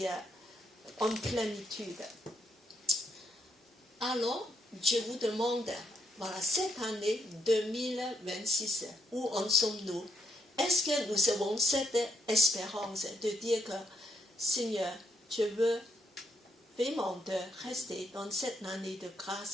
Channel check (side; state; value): both; normal; correlation 0.76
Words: en plénitude. Alors, je vous demande, voilà, cette année 2026, où en sommes-nous? Est-ce que nous avons cette espérance de dire que, Seigneur, je veux vraiment de rester dans cette année de